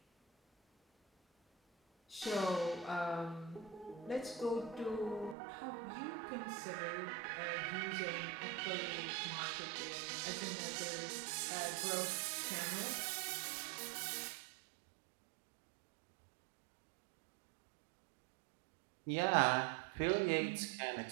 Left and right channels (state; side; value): drops out; left; at 5.4 s